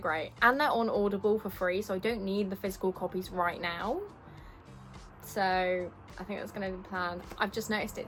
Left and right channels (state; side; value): identical; both; correlation 1.00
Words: and they're on Audible for free, so I don't need the physical copies right now. So I think that's going to be the plan. I've just noticed